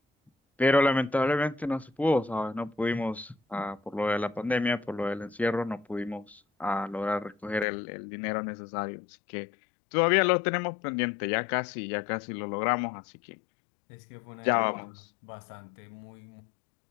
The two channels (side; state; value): right; drops out; at 7.7 s